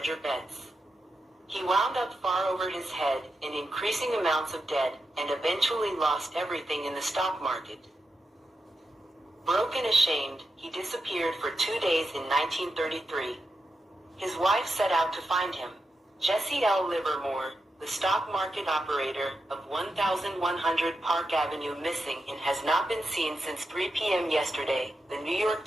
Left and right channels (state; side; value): normal; both; correlation 0.87